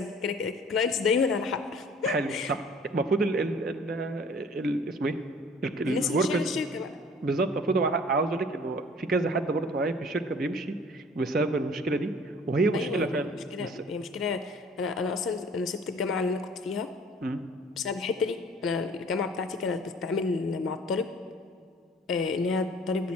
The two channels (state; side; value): normal; both; correlation 0.51